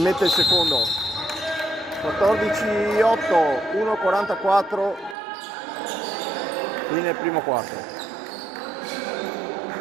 mette il secondo. 14-8, 1-44 qui nel primo quarto.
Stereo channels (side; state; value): left; drops out; at 5.2 s